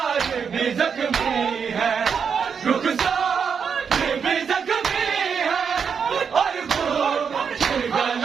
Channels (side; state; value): left; quieter; 6.5 dB